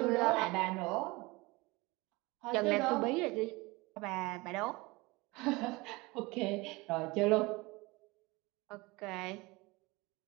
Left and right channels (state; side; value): quieter; left; 23.4 dB